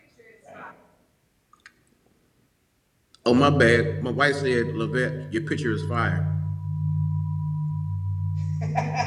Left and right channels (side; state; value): both; identical; correlation 1.00